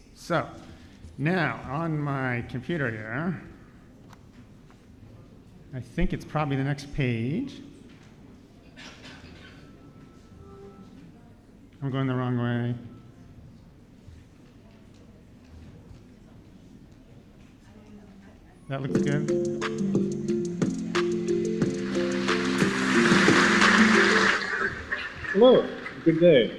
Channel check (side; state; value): both; identical; correlation 1.00